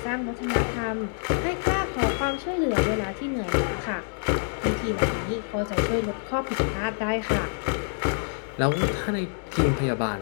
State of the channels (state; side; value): silent; right; 61 dB below the other